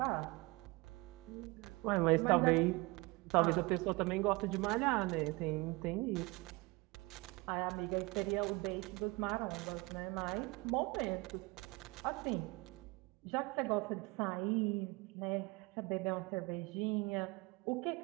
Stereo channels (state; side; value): quieter; left; 24.4 dB